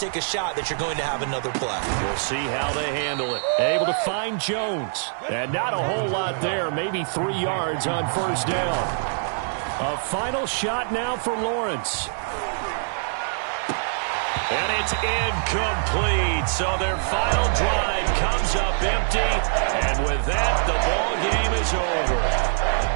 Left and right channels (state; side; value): silent; left; 61 dB below the other